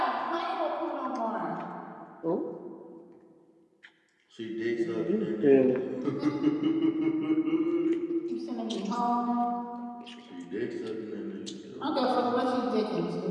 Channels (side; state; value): both; identical; correlation 1.00